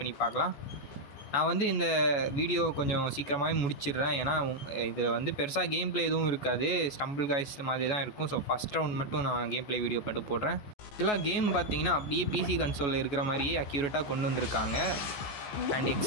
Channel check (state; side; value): late; right; 14 ms